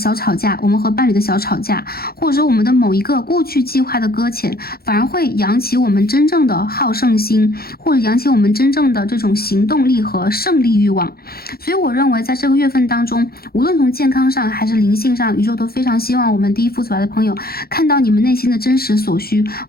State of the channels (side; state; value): right; late; 0.44 ms